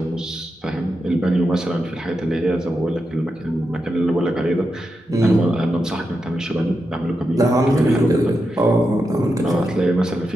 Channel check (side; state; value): both; normal; correlation 0.87